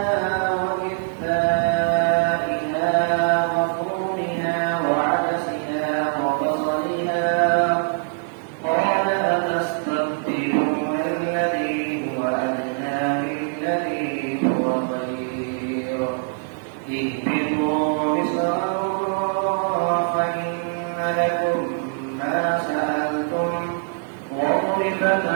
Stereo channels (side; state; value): left; silent; 55 dB below the other